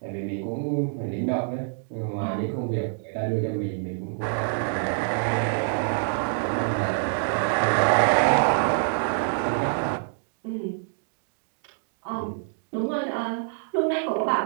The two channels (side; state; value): left; silent; 61 dB below the other